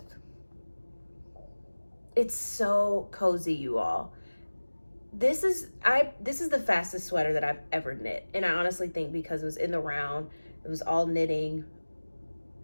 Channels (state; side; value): inverted; both; correlation -1.00